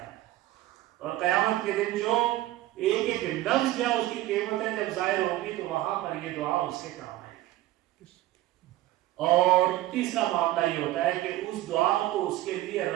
ہے، اور قیامت کے دن جو ایک ایک لفظ یا اس کی قیمتیں جب ظاہر ہوں گی تو وہاں پر یہ دعا اس کے کام آئے گی۔ اور تیسرا معاملہ یہ ہوتا ہے کہ اس دعا کو اس کے لیے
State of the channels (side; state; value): left; quieter; 15.8 dB